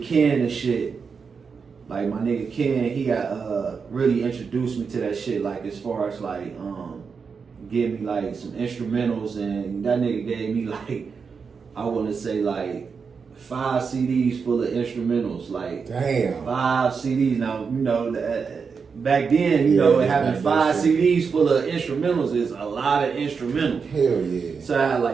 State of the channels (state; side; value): quieter; left; 5.6 dB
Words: Ken and shit. Like my nigga Ken, he got really introduced me to that shit. Like as far as like give me like some instrumentals, and that nigga gave me like I want to say like 5 CDs full of instrumentals, like damn 5 CDs. Now you know back then, you know, having 5 CDs full of instrumentals is a lot of instrumentals. Hell yeah! So I had